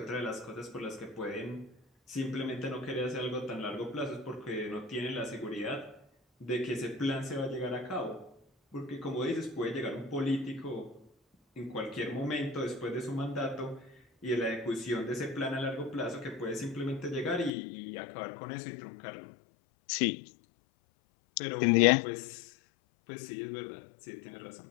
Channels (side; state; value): right; drops out; at 17.5 s